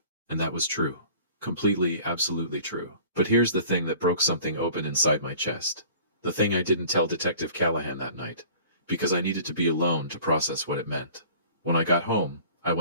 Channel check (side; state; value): both; inverted; correlation -0.47